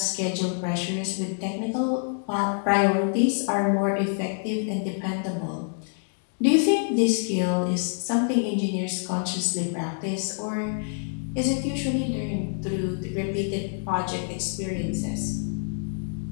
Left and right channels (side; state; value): right; silent; 61 dB below the other